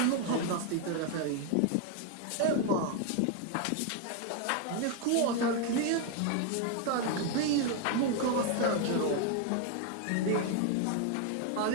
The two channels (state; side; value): different; both; correlation 0.01